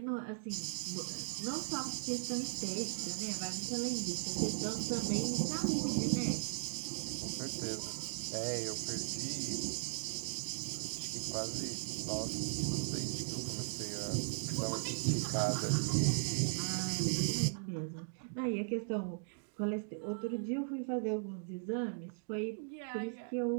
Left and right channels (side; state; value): left; silent; digital silence